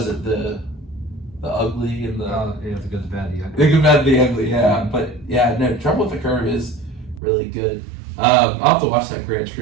it the Ugly and the the Good, the Bad, the Ugly. The Good, Bad, the Ugly. Yeah, but yeah, no, Trouble with the Curve is really good. I'll have to watch that Gran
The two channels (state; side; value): drops out; left; at 7.2 s